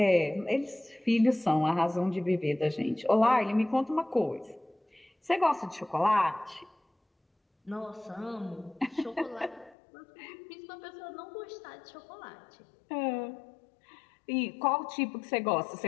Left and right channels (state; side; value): drops out; right; at 9.8 s